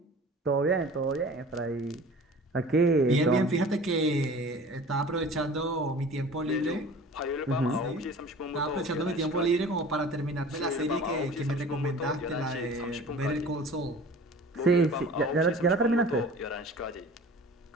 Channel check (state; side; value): normal; both; correlation 0.43